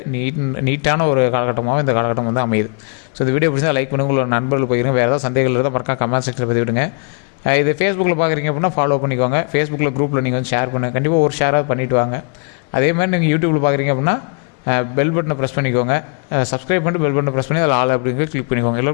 நீட்டான ஒரு காலகட்டமாகவும் இந்த காலகட்டம் வந்து அமையுது. ஸோ இந்த வீடியோ பிடிச்சா லைக் பண்ணுங்கள், உங்களோட நண்பர்கள் போயிருங்க. வேறு ஏதாவது சந்தேகங்கள் இருந்தால் மறக்காம கமெண்ட் செக்ஷனில் பதிவு விடுங்க. இது ஃபேஸ்புக்கில் பார்க்குறீங்க அப்படின்னா ஃபாலோ பண்ணிக்கோங்க. ஃபேஸ்புக்கில் குரூப்பில் நீங்கள் வந்து ஷேர் பண்ணுங்கள். கண்டிப்பாக ஒரு ஷேராக பண்ணிவிட்டு வாங்க. அதே மாதிரி நீங்கள் யூடியூப்பில் பார்க்குறீங்க அப்படின்னா பெல் பட்டனை ப்ரெஸ் பண்ணிக்கோங்க. சப்ஸ்கிரைப் பண்ணிட்டு பெல் பட்டனை ப்ரெஸ் பண்ணி அதில் ஆல் அப்படிங்கிற கிளிக் பண்ணிக்கோங்க.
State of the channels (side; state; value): right; quieter; 39.1 dB